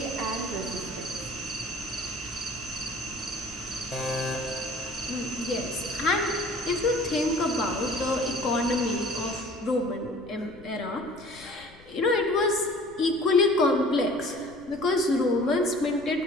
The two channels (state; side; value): noise; left; rumble, 23 dB below the sound